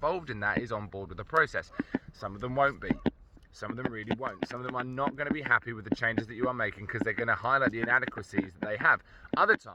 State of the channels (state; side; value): identical; both; correlation 1.00